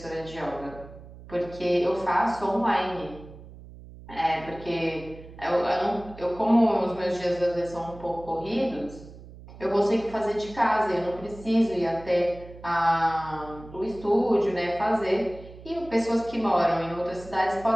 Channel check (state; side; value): noise; right; hum, 17 dB below the sound